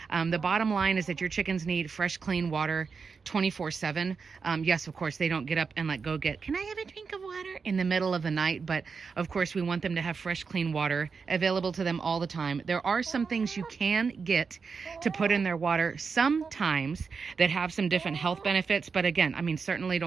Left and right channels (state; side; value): quieter; left; 5.3 dB